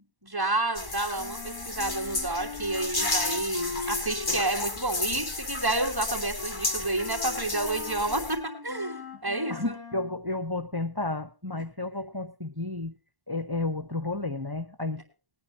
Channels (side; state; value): left; late; 1.1 ms